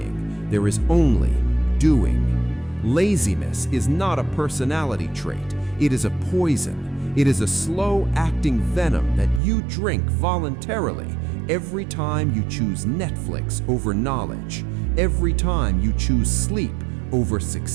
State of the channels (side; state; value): left; drops out; at 9.4 s